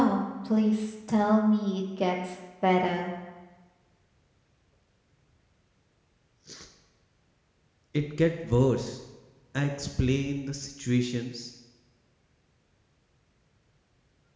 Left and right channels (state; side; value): identical; both; correlation 1.00